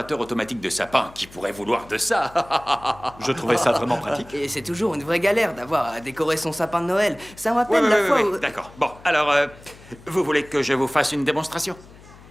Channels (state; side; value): noise; left; hum, 22 dB below the sound